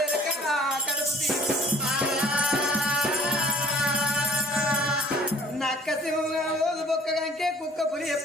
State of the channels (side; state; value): both; normal; correlation 0.55